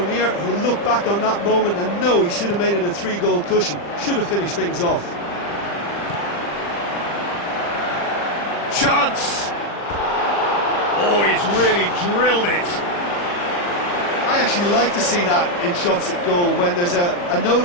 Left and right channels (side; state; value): right; late; 40 ms